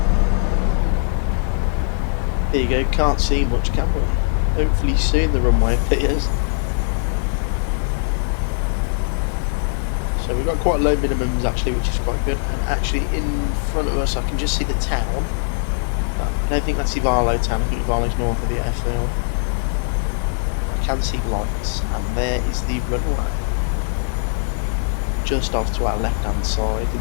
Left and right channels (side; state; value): right; silent; digital silence